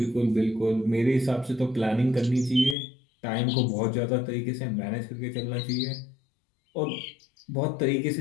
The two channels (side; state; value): right; drops out; at 2.8 s